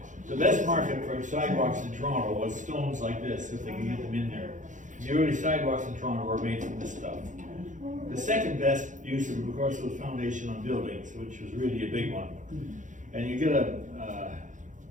The best market for sidewalks in Toronto was stones like this, if they can get them in there. The early sidewalks in Toronto were made from this stuff. The second best use of course, was foundation on buildings, which was really a big one. And you get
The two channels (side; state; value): left; late; 0.36 ms